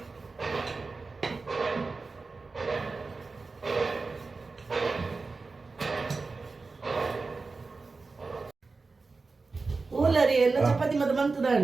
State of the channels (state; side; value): quieter; left; 4.0 dB